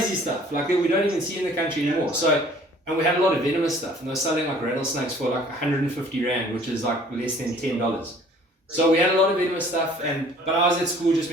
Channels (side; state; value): both; normal; correlation 0.53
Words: stuff like that we don't even see in the country anymore. So, and we had a lot of venomous stuff, and they were selling like rattlesnakes for like 150 Rand, which is like less than $10. So we had a lot of venomous stuff, but I was at school just